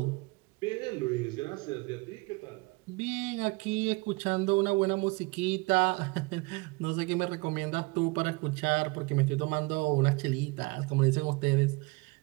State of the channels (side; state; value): left; quieter; 25.9 dB